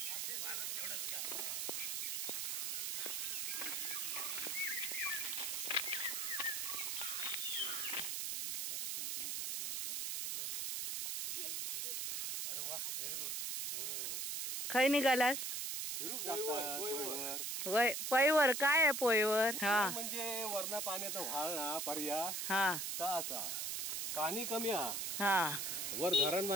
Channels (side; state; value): right; noise; hiss, 1 dB below the sound